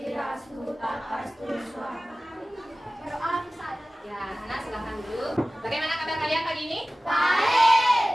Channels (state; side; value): normal; both; correlation 0.97